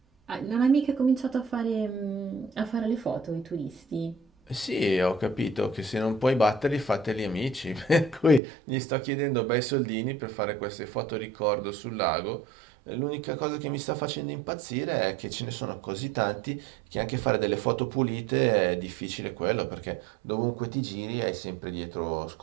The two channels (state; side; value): drops out; left; at 8.4 s